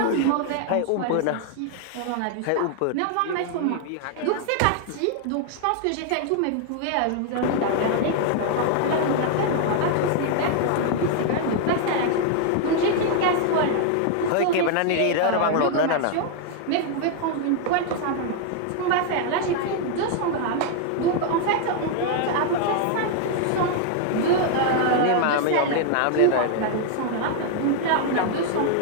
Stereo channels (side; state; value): both; different; correlation 0.00